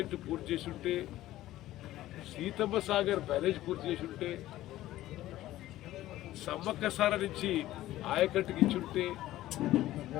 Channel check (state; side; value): quieter; right; 15.0 dB